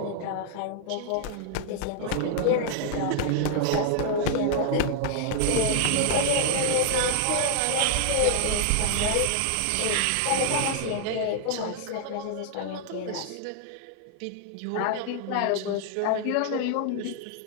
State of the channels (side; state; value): both; different; correlation -0.01